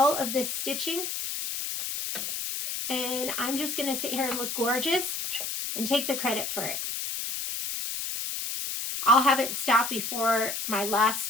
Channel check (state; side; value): noise; left; hiss, 4 dB below the sound